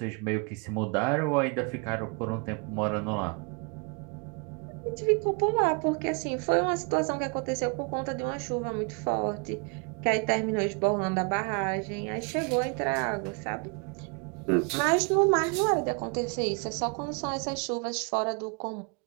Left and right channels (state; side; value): quieter; left; 34.1 dB